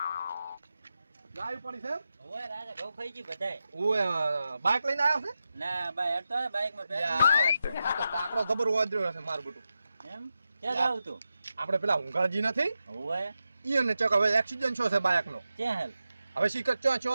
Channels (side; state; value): both; inverted; correlation -0.90